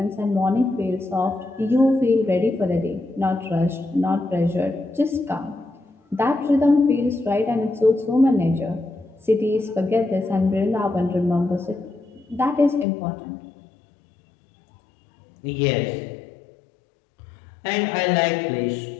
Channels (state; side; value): drops out; right; at 12.9 s